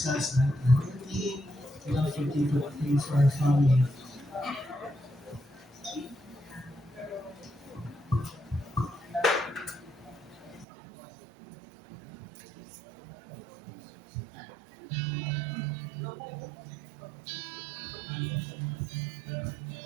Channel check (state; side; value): drops out; left; at 10.7 s